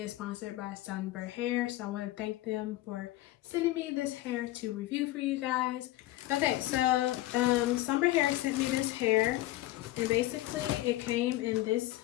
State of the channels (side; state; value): right; quieter; 16.4 dB